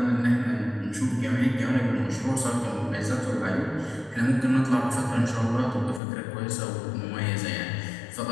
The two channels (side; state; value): right; drops out; at 6.0 s